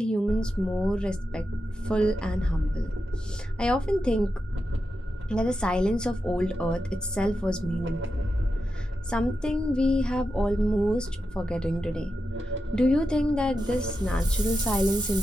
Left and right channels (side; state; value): both; normal; correlation 0.89